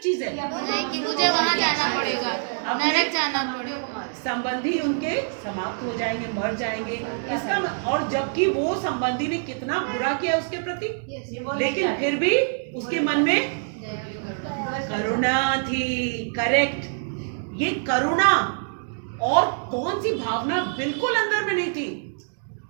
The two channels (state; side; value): silent; left; digital silence